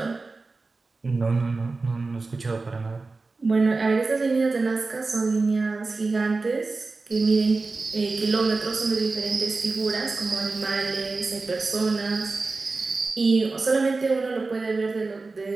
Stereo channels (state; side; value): quieter; left; 3.7 dB